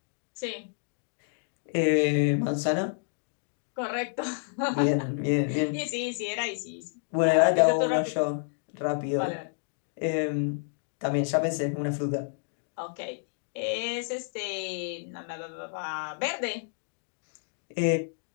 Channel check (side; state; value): right; silent; digital silence